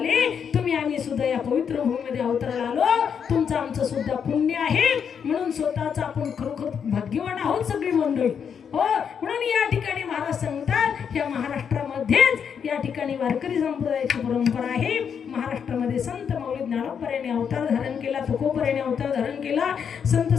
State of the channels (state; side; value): quieter; right; 7.3 dB